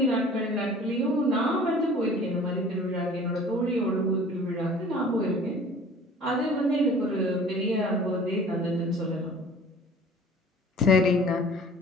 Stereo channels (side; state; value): both; normal; correlation 0.47